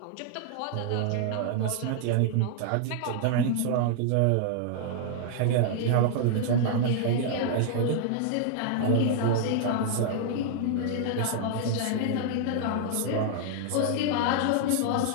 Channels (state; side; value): different; both; correlation -0.01